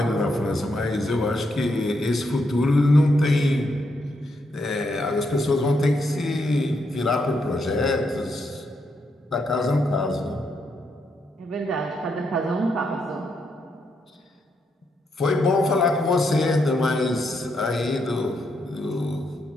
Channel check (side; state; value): both; normal; correlation 0.79